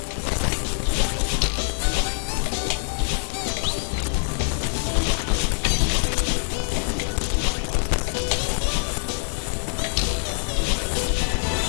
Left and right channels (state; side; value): silent; right; digital silence